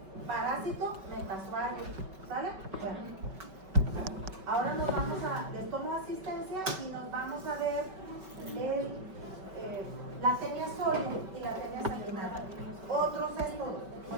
parásito metasuario. ¿Sale? Bueno. Ahora nos vamos a, les tomo asistencia y nos vamos a ver la tenia sólida y la tenia sanguinaria. Otros céstodos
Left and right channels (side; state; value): left; late; 5.3 ms